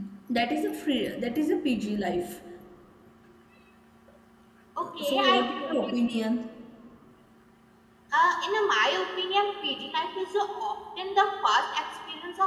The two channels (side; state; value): both; identical; correlation 1.00